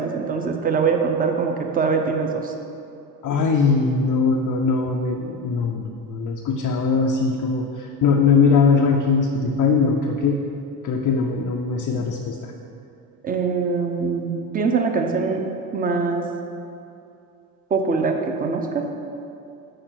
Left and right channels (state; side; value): normal; both; correlation 0.24